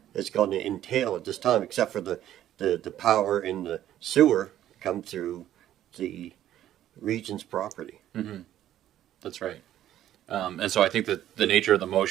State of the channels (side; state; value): left; quieter; 12.2 dB